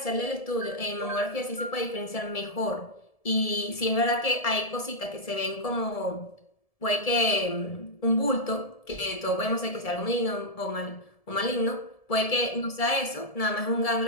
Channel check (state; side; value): late; right; 1.7 ms